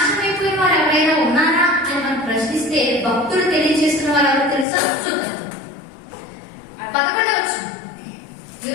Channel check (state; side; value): drops out; right; at 4.7 s